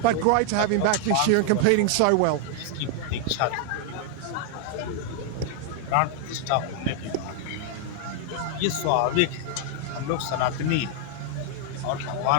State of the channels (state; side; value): different; both; correlation 0.00